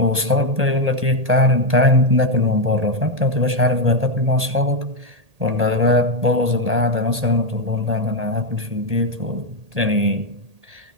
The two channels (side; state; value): left; late; 1.8 ms